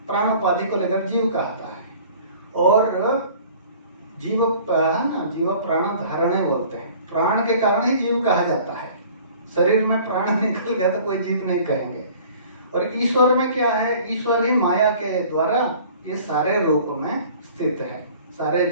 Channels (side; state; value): both; inverted; correlation -0.49